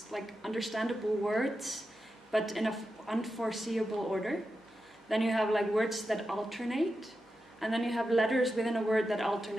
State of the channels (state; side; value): normal; both; correlation 0.90